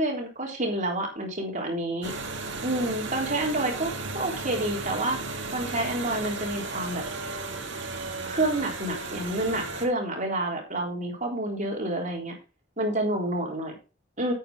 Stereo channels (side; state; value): both; normal; correlation 0.10